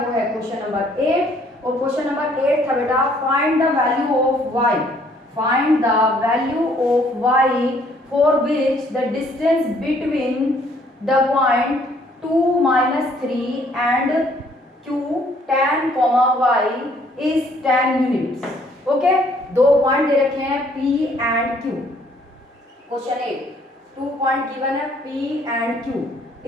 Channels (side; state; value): both; normal; correlation 0.63